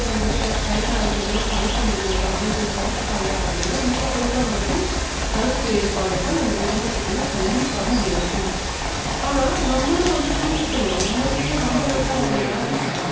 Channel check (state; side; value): identical; both; correlation 1.00